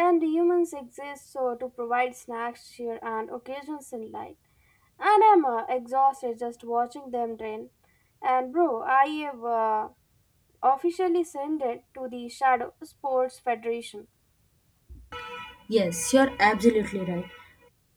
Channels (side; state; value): both; identical; correlation 1.00